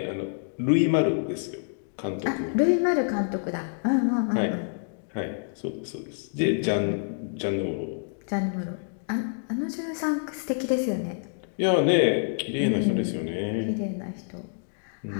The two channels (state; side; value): silent; right; digital silence